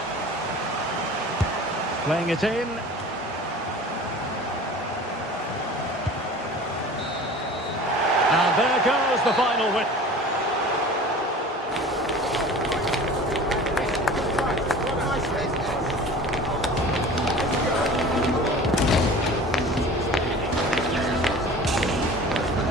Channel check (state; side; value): normal; both; correlation 0.41